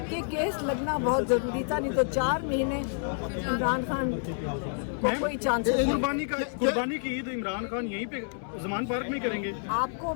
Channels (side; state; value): right; silent; digital silence